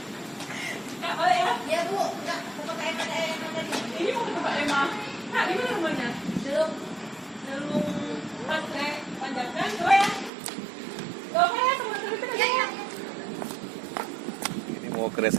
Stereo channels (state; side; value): drops out; left; at 10.3 s